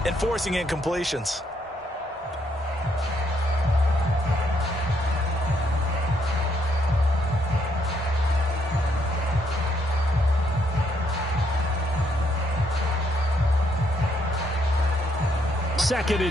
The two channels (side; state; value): both; normal; correlation 0.73